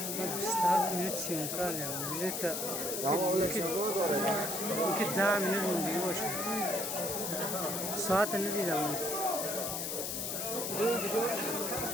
استاف میره سیمکار یا میره تا که 10 minut موندگی باشه ساعت ندیدم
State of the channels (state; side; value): noise; left; hiss, 2 dB below the sound